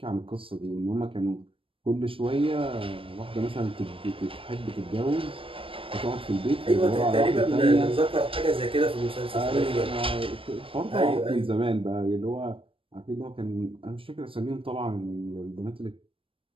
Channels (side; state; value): left; late; 0.26 ms